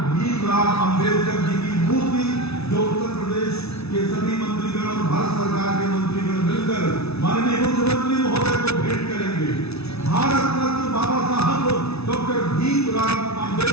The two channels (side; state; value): right; late; 0.79 ms